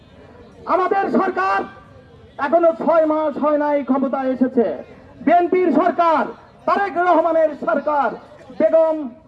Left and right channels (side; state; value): both; identical; correlation 1.00